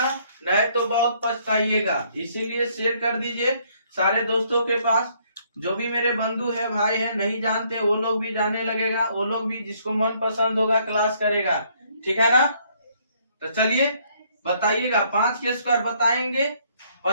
नहीं तो बहुत पछताइएगा। इसीलिए शेयर कर दीजिए सारे दोस्तों के पास। जो भी मेरे बंधु है भाई है नहीं जानते वो लोग भी जानने लगेगा, वो लोग भी जिसको मन पसंद होगा क्लास करेगा। ठीक है ना, तो चलिए बताइएगा। 5 के स्क्वायर बताएंगे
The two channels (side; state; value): both; inverted; correlation -0.66